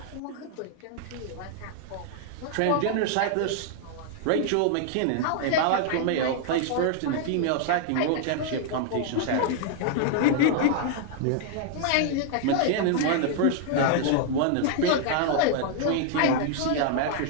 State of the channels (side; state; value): both; different; correlation 0.00